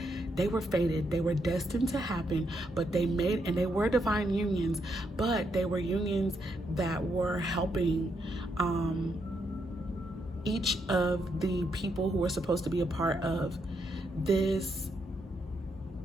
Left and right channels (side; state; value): both; normal; correlation 0.78